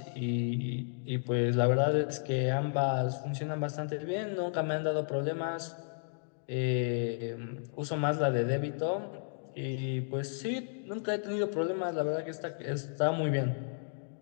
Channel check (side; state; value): right; silent; digital silence